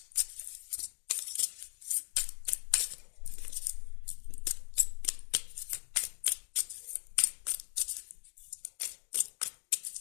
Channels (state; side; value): silent; right; digital silence